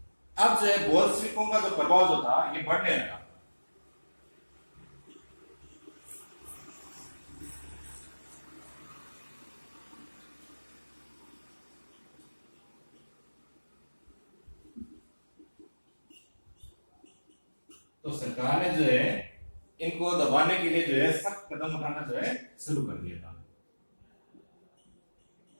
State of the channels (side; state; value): both; inverted; correlation -1.00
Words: अब जो है बोल्शेविकों का जो प्रभाव जो था ये बढ़ने लगा। तो सरकार ने जो है इनको दबाने के लिए जो है सख्त कदम उठाना जो है शुरू कर दिया था।